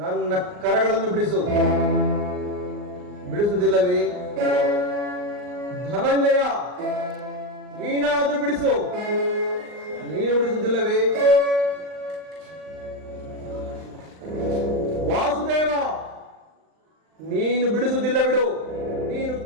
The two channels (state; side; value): late; left; 39 ms